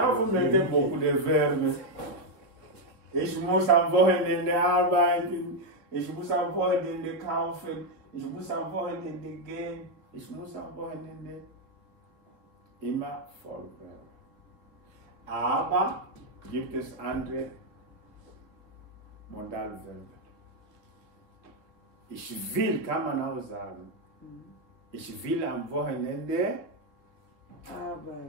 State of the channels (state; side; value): late; left; 2.9 ms